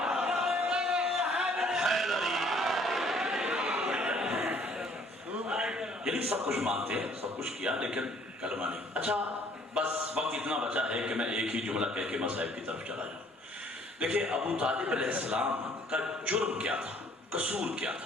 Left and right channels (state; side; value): normal; both; correlation 0.59